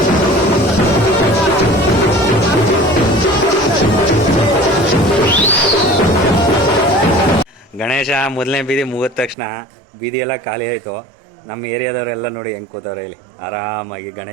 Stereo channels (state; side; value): drops out; left; at 9.3 s